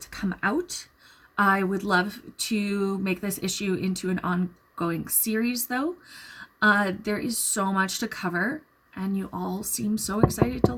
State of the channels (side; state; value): both; identical; correlation 1.00